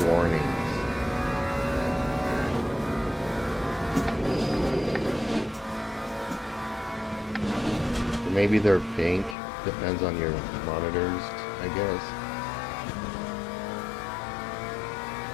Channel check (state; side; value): drops out; right; at 9.3 s